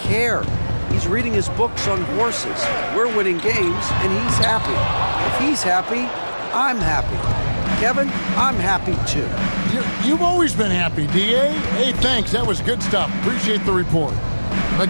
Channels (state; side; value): inverted; both; correlation -1.00